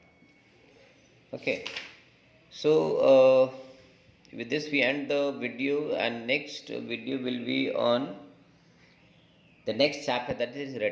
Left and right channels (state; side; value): identical; both; correlation 1.00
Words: ओके। सो with this we end the video, and next video will be on the next chapter, that is